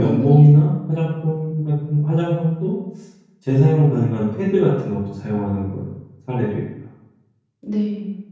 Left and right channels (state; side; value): identical; both; correlation 1.00